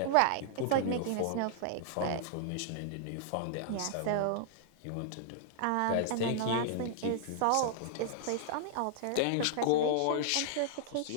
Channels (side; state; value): both; different; correlation -0.01